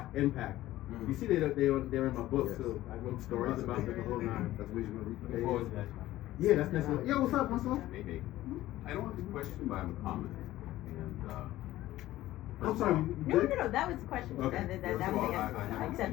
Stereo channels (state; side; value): quieter; right; 15.4 dB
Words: impact. You see, they're in my book, so I wrote stories about them the whole 9. That's what you're going to Look forward to that. Yeah, that's necessary. Yo, what's up, Marcel? Hey. I don't have a question, but I have a comment. And I'm sorry. No, that was the question. Okay. That was the answer. I accept